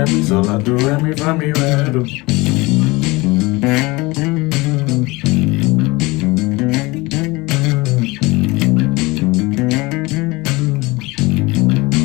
mi, sol la do re mi, fa mi re do.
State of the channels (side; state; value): right; quieter; 23.1 dB